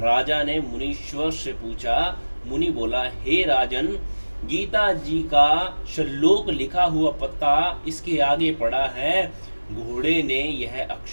ने मुनीश्वर से पूछा। मुनि बोला, हे राजन, गीता जी का श्लोक लिखा हुआ पत्ता इसके आगे पड़ा है। घोड़े ने यह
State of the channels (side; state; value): both; inverted; correlation -1.00